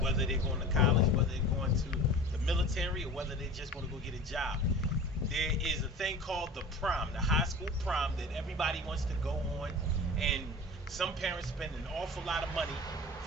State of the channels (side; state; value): both; normal; correlation 0.37